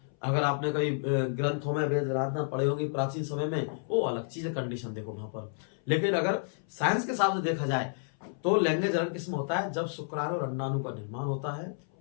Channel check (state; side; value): silent; right; 57 dB below the other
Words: अगर आपने कई ग्रंथों में वेद आराधना पढ़े होंगे प्राचीन समय में, वो अलग चीज है, कंडीशन देखो वहां पर। लेकिन अगर साइंस के हिसाब से देखा जाए तो लैंगिक जनन किसमें होता है, जब शुक्राणु और अंडाणु का निर्माण होता है,